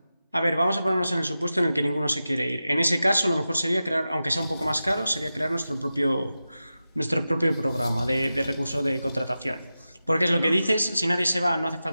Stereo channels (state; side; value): inverted; both; correlation -0.93